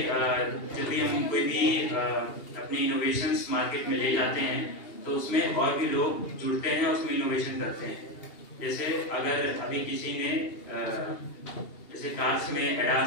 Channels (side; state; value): right; late; 2.8 ms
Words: जब भी हम कोई भी अपनी इनोवेशंस मार्केट में ले जाते हैं, तो उसमें और भी लोग जुड़ते हैं, उसमें इनोवेशन करते हैं। जैसे अगर अभी किसी ने जैसे कार्स में